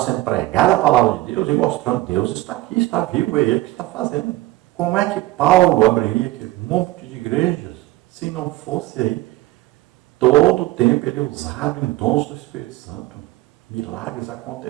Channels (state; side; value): quieter; left; 18.0 dB